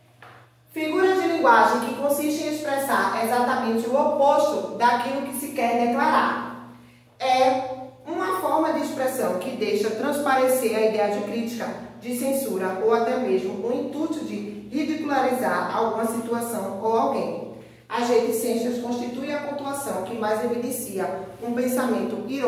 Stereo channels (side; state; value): both; identical; correlation 1.00